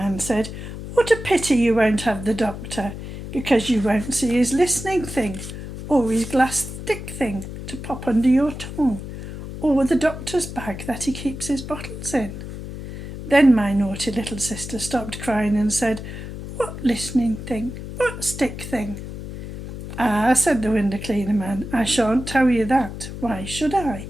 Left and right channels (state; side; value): noise; left; hum, 9 dB below the sound